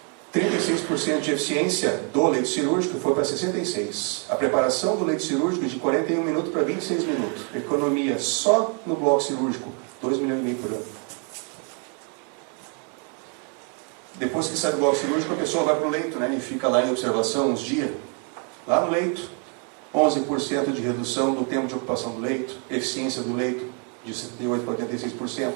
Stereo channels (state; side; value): quieter; left; 39.4 dB